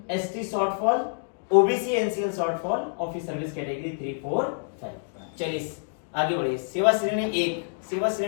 ST shortfall, OBC NCL shortfall और फिर सर्विस कैटेगरी 3 4 5। चलिए आगे बढ़िए। सेवा श्रेणी 1, सेवा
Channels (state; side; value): silent; right; 60 dB below the other